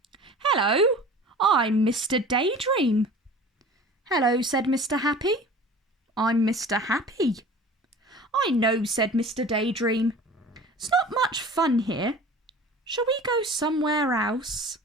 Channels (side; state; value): both; normal; correlation 0.41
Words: "Hello, I'm Mr. Daydream." "Hello," said Mr. Happy. "I'm Mr. Happy." "I know," said Mr. Daydream. "It's not much fun here. Shall we go somewhere else?"